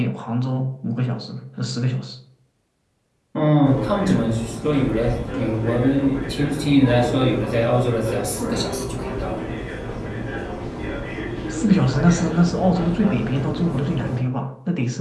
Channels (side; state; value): both; identical; correlation 1.00